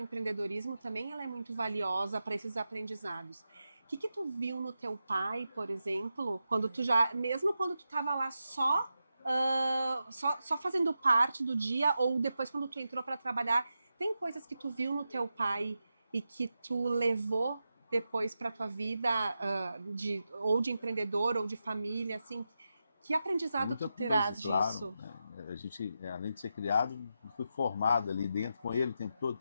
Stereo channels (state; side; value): inverted; both; correlation -0.89